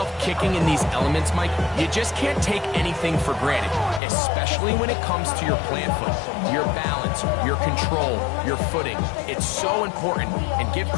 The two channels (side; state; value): right; drops out; at 4.0 s